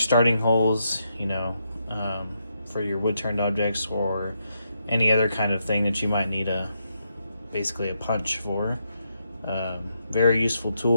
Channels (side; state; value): both; inverted; correlation -0.80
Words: holes, for your wood turned objects or any other kind of thing that you might need basically a punch for. Very useful